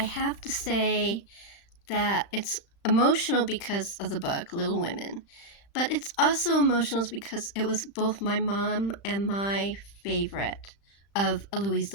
have to say that it's emotional because of the book, Little Women. But it's also emotional because it was both my mom and my favorite of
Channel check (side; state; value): right; late; 35 ms